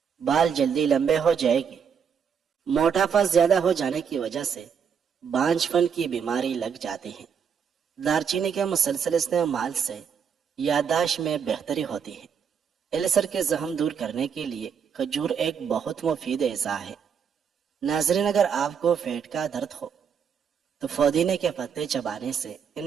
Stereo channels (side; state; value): left; quieter; 7.1 dB